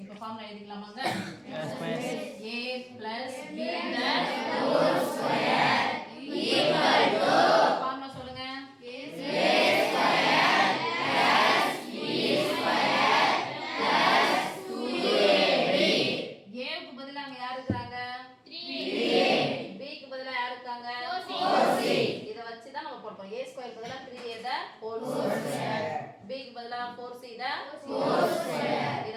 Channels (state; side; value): identical; both; correlation 1.00